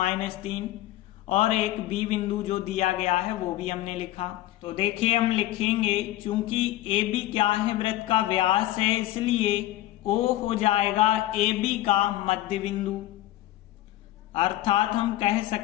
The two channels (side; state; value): right; quieter; 15.2 dB